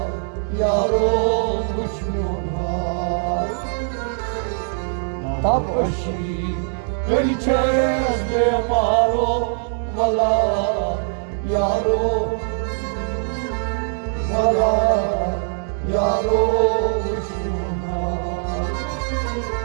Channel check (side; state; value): left; silent; 59 dB below the other